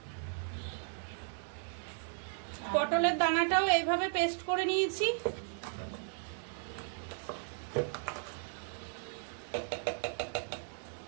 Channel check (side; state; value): left; silent; 54 dB below the other